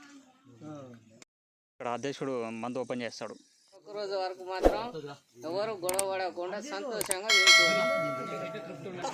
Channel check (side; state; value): both; identical; correlation 1.00